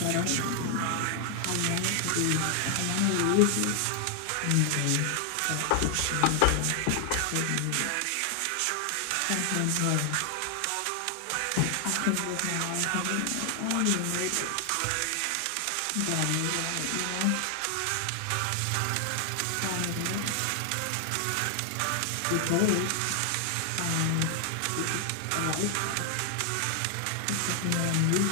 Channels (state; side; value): different; both; correlation 0.00